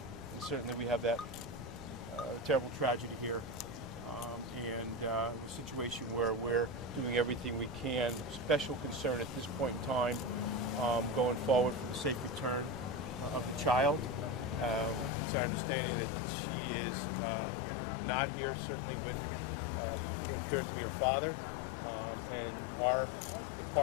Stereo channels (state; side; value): drops out; right; at 15.1 s